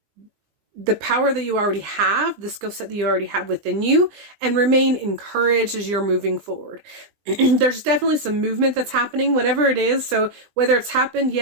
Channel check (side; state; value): left; late; 20 ms